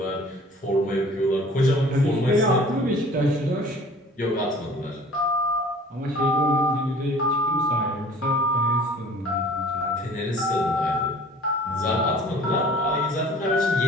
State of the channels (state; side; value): normal; both; correlation 0.48